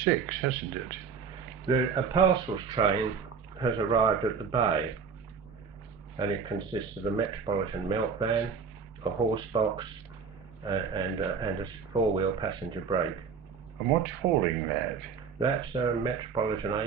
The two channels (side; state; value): left; quieter; 6.0 dB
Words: hasn't it? A parcels train has arrived at the bay, and it consists of a Metropolitan melt van, a horse box, and a four-wheel passenger brake. And what's hauling that? That's a Metropolitan